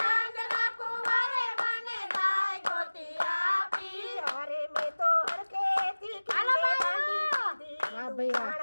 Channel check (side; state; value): both; inverted; correlation -1.00